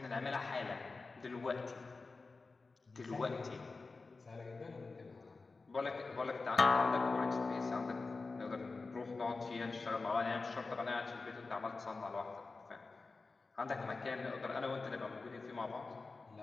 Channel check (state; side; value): quieter; right; 3.9 dB